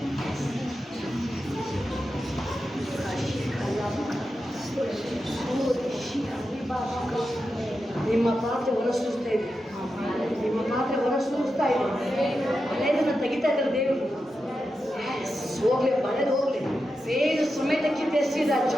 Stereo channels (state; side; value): normal; both; correlation 0.89